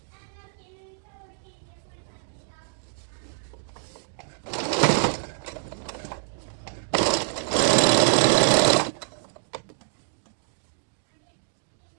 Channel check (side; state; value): left; silent; digital silence